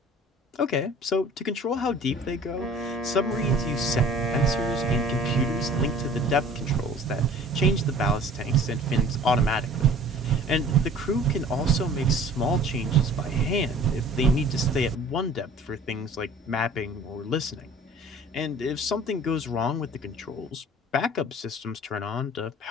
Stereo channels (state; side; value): normal; both; correlation 0.48